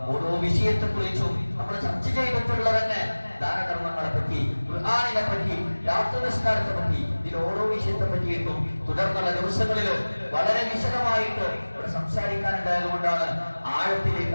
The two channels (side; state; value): both; inverted; correlation -1.00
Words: ഓരോ വിഷയത്തെ കുറിച്ചും നമ്മൾ ചർച്ച ചെയ്തിട്ടുള്ള തന്നെ ദാനകർമ്മങ്ങളെ പറ്റി, ഖുർആനിനെ പറ്റി, രാത്രി നിസ്കാരത്തെ പറ്റി, ഇതിൽ ഓരോ വിഷയത്തെ പറ്റിയിട്ടും തുടർന്നുള്ള ദിവസങ്ങളിൽ വളരെ വിശദമായിട്ട് ഇവിടെ സംസാരിക്കാനുണ്ടായത് കൊണ്ടാണ് ആഴത്തിലേക്ക്